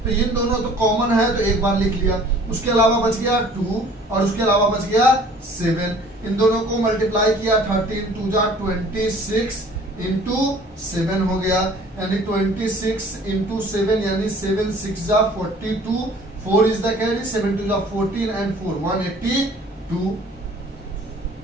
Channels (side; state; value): both; normal; correlation 0.51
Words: तो इन दोनों तो कॉमन है तो एक बार लिख लिया, उसके अलावा बच गया 2 और उसके अलावा बच गया 7। इन दोनों को मल्टीप्लाई किया, 13 2 जा 26 इंटू 7 हो गया, यानी 26 इंटू 7 यानी 7 6 जा 42, 4 इज द कैरी, 7 2 जा 14 एंड 4 182।